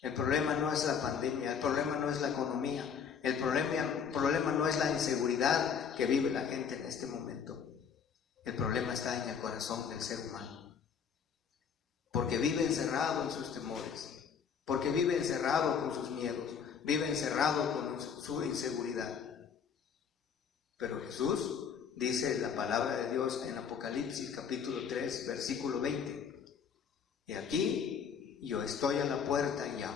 el problema no es la pandemia, el problema no es la economía, el problema no es la inseguridad que vive la gente en este momento. El problema está en el corazón del ser humano, porque vive encerrado en sus temores, porque vive encerrado con sus miedos, vive encerrado con su inseguridad. Pero Jesús dice la palabra de Dios en Apocalipsis capítulo 3, versículo 20: y aquí yo estoy a la puerta y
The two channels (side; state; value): right; quieter; 6.9 dB